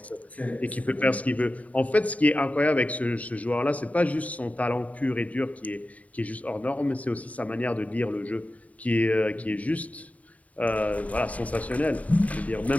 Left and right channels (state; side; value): late; right; 0.069 ms